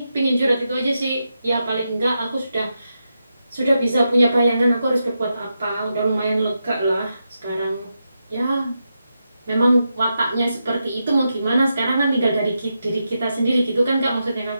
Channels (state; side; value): inverted; both; correlation -0.86